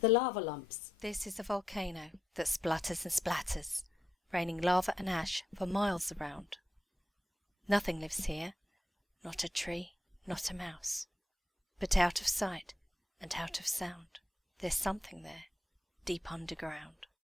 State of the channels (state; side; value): normal; both; correlation 0.84